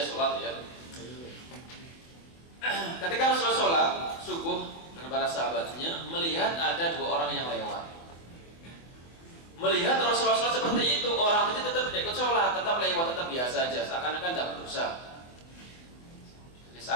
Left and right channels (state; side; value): late; right; 24 ms